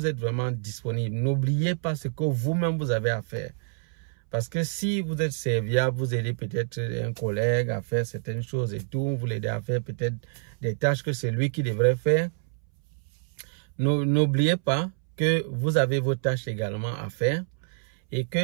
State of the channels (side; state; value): left; silent; 60 dB below the other